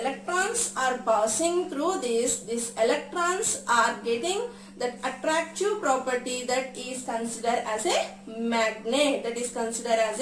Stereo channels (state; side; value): identical; both; correlation 1.00